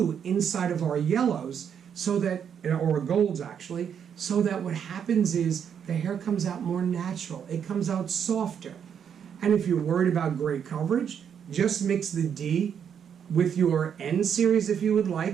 inside of our yellows, so that, or golds actually, so that what happens is the hair comes out more natural. It comes out softer. And if you're worried about gray coverage, just mix the D with your N series if you would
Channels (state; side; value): quieter; left; 8.0 dB